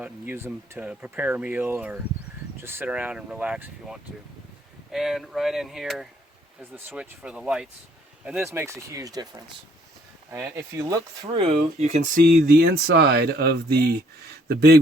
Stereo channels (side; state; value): both; normal; correlation 0.64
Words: and use them to prepare a meal or just sit around and relax if you want to. And right in here is the switch for the lights, and this makes a huge difference. And if you look through, you can see the inside of the